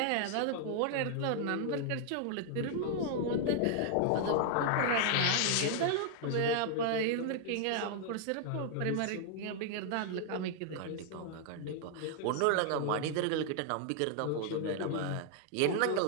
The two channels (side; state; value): both; different; correlation 0.00